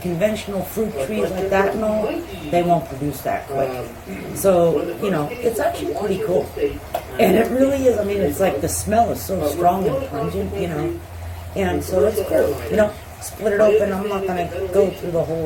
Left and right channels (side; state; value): both; identical; correlation 1.00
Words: conventional fruit trees like that and all, they won't produce that quick. So, you know, it's actually pretty cool. And it really is, I mean, it's like the smell is so strong and pungent, you know, and so it's cool, you know. Split it open. I'm not going to go through the